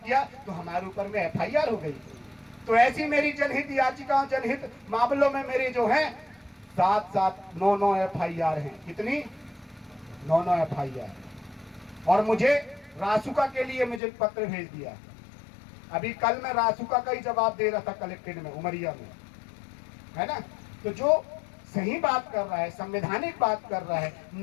किया, तो हमारे ऊपर में FIR हो गई। तो ऐसी मेरी जनहित याचिकाओं, जनहित मामलों में मेरे जो है 9 FIR हैं। कितनी? 9 FIR। और मुझे रासुका के लिए मुझे पत्र भेज दिया। अभी कल मैं रासुका का ही जवाब दे रहा था कलेक्टेड में, उमरिया में, है ना। तो जो सही बात कर रहा है, संवैधानिक बात कर रहा है,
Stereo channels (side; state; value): right; drops out; at 14.0 s